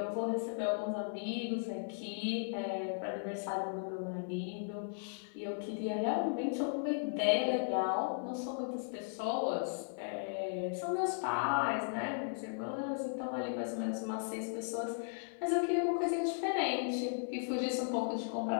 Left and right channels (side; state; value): right; silent; 53 dB below the other